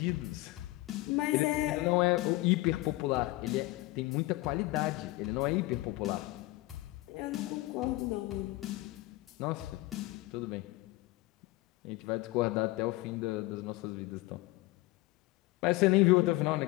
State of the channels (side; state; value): right; quieter; 19.8 dB